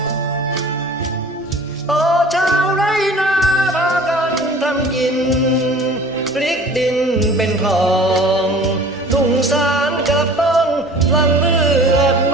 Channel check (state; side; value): normal; both; correlation 0.45